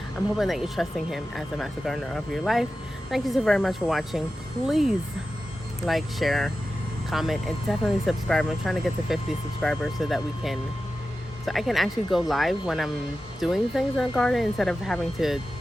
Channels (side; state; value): both; normal; correlation 0.93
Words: I'm hoping that you're trusting him as a master gardener of your life. Thank you so very much for watching. Please like, share, comment, and definitely subscribe. I'm trying to get to 50 subscribers so I can actually go live when I'm doing things in the garden instead of having to